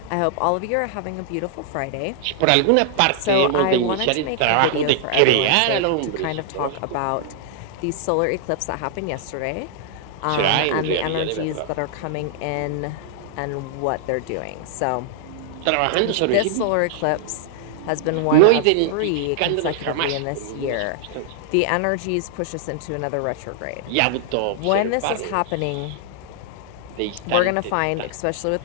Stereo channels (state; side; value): different; both; correlation -0.01